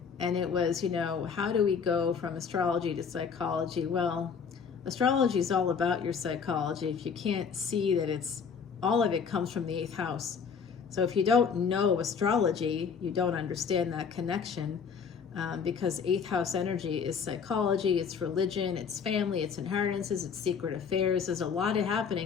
And it was, you know, how do we go from astrology to psychology? Well, astrology is all about your psychology. If you can't see that it's, all of it comes from the 8th house. So if you don't know astrology, you don't understand that connection. because 8th house energy is psychology, it's religion, it's family, it's inheritances, it's secret affairs. There's a lot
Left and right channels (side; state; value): right; quieter; 6.3 dB